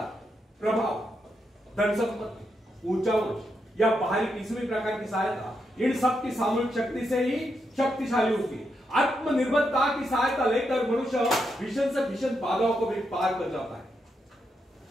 प्रभाव, धन संपत्ति, ऊंचा वंश या बाहरी किसी भी प्रकार की सहायता, इन सब की सामूहिक शक्ति से ही शक्तिशाली होती है। आत्मनिर्भरता की सहायता लेकर मनुष्य भीषण से भीषण बाधाओं को भी पार कर जाता है,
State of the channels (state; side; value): normal; both; correlation 0.82